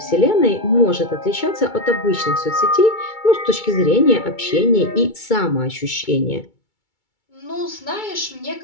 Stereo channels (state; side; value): late; right; 2.3 ms